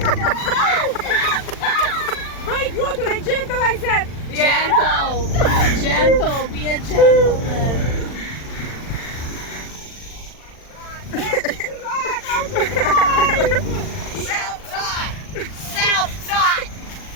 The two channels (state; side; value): late; right; 40 ms